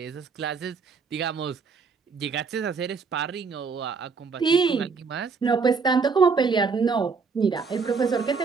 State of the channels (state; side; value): quieter; left; 5.1 dB